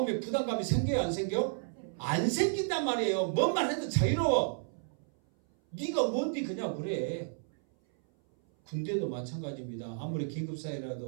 부담감이 생겨요 안 생겨? 안 생긴단 말이에요. 뭔 말 해도 자유로워. 네가 뭔데 그냥 그래. 군대도 마찬가지입니다. 아무리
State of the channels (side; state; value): left; silent; 56 dB below the other